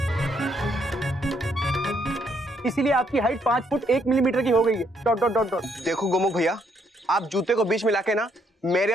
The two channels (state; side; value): normal; both; correlation 0.72